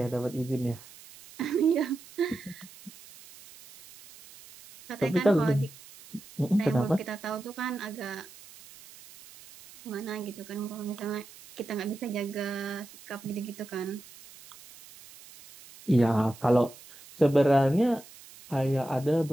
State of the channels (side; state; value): right; noise; hiss, 20 dB below the sound